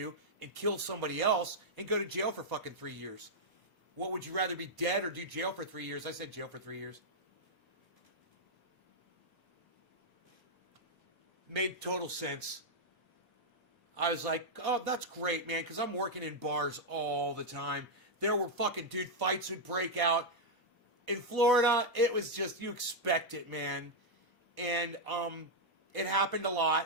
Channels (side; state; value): both; normal; correlation -0.02